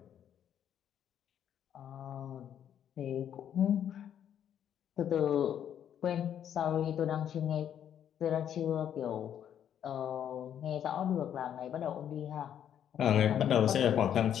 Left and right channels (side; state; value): right; quieter; 9.6 dB